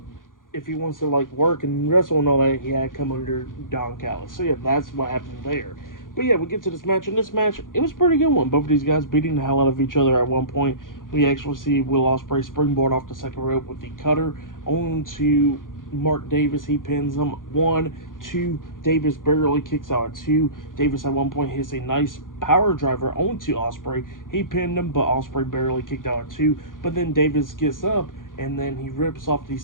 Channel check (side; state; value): right; late; 0.90 ms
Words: If he wants to like work and wrestle and all that, he had to come under Don Callis. So yeah, that's what happened there. But yeah, we get to this match, and this match, it was a pretty good one. Both of these guys beating the hell out of each other at one point. We actually see Will Ospreay springboard off the second rope with the cutter onto Mark Davis. He pins him. 1, 2. Davis barely kicks out at 2. Davis at one point hits a nice power driver onto Ospreay. He pinned him, but Ospreay barely kicked out at 2. But then Davis gets up, and then he rips off the